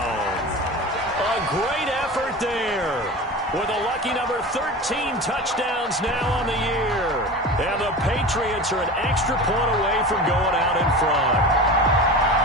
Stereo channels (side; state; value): both; normal; correlation 0.31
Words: A great effort there. With a lucky number 13 touchdowns now on the year. And the Patriots are an extra point away from going out in front.